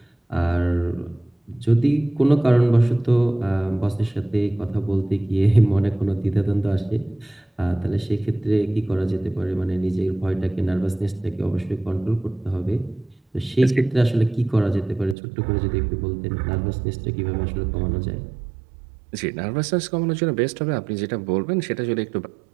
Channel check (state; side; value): drops out; left; at 15.2 s